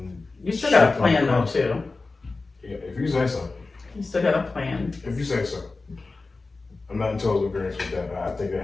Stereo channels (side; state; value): right; quieter; 3.7 dB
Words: you still got a plan, though, too. Yeah, if you say so. You still got a plan. If you say so. I'm not in total agreement with that. I think there